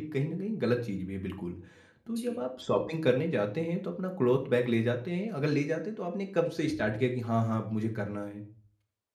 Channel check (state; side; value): identical; both; correlation 1.00